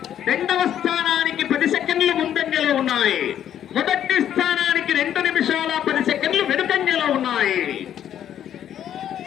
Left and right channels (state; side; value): quieter; right; 10.3 dB